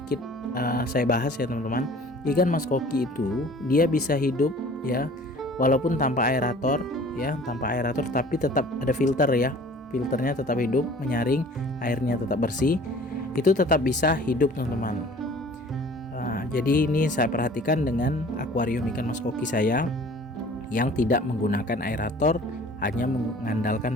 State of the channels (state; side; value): normal; both; correlation 0.48